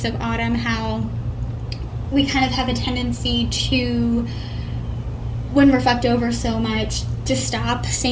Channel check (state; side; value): identical; both; correlation 1.00